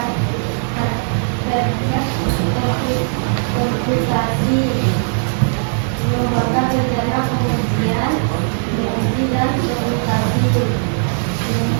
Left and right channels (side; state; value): left; silent; 55 dB below the other